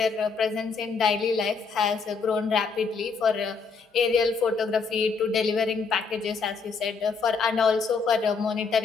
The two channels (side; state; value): right; quieter; 5.0 dB